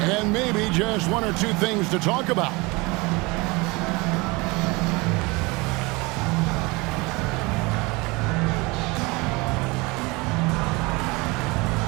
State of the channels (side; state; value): left; quieter; 25.1 dB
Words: and maybe just one or two things to talk about.